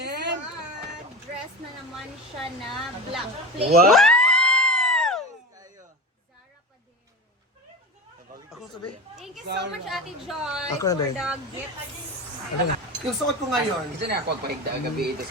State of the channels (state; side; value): normal; both; correlation 0.26